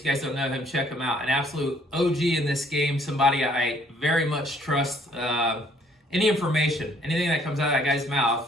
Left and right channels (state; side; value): normal; both; correlation 0.62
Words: If you guys don't know him, check him out. An absolute OG in this game, somebody I very much trust. Any information, anything that comes out of that guy's